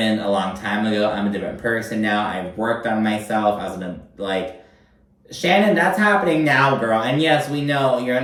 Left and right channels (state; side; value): identical; both; correlation 1.00